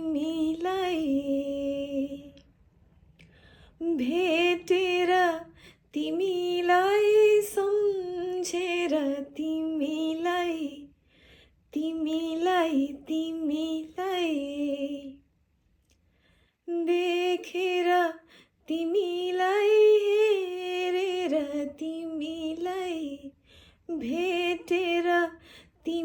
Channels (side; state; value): both; identical; correlation 1.00